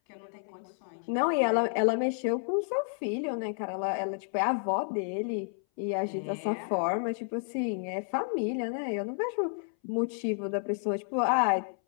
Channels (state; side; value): silent; right; 57 dB below the other